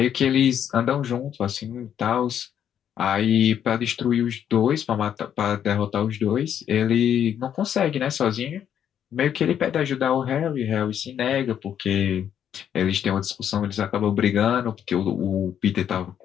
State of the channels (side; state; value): right; quieter; 9.3 dB